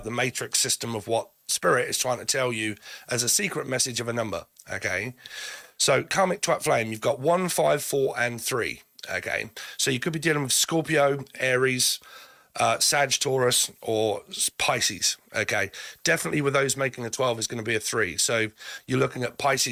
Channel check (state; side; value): identical; both; correlation 1.00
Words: the matrix system of what Spirit is trying to tell you as a secret message of a number. Okay, so Karmic Twat Flame, you've got 1, 5, 4, and 3. Okay, so you could be dealing with Scorpio, Aries, Sag, Taurus, or Pisces. Okay, definitely with those making a 12 is going to be a 3. So you're looking at